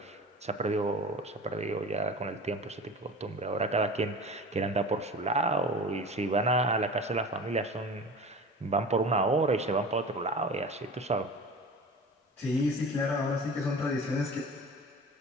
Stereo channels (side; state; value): both; normal; correlation 0.36